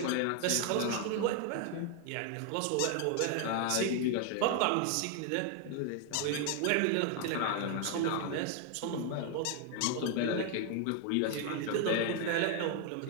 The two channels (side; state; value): both; different; correlation 0.00